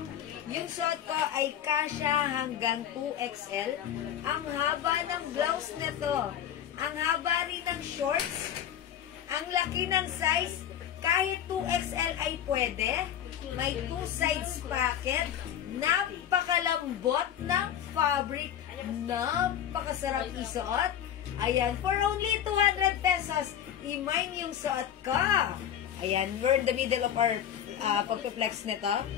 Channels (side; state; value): right; quieter; 10.0 dB